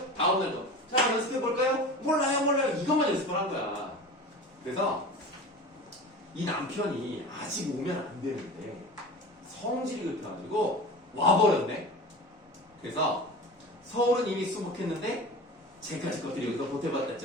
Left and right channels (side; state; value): both; normal; correlation 0.34